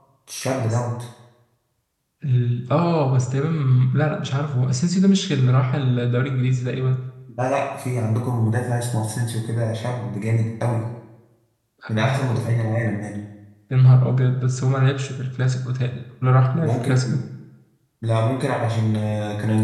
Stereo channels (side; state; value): both; identical; correlation 1.00